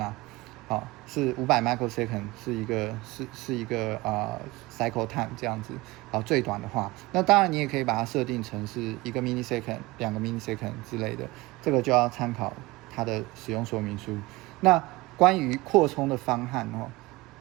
是500 microsecond 是一个cycle time 这样子。最短的话，那当然你也可以把它设定成是1个 millisecond、2个 millisecond 之类的，这个就要参考它的使用说明书。那关于扩充的方案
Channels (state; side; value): quieter; left; 21.5 dB